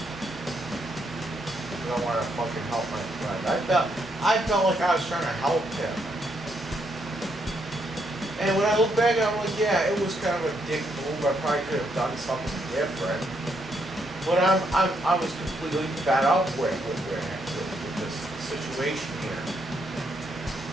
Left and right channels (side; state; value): both; normal; correlation 0.76